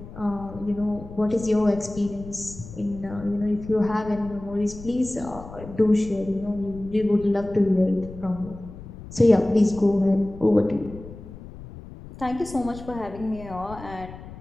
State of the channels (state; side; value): noise; left; rumble, 15 dB below the sound